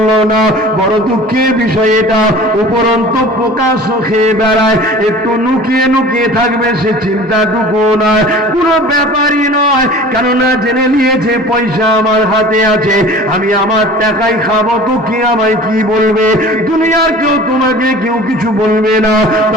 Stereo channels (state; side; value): normal; both; correlation 0.42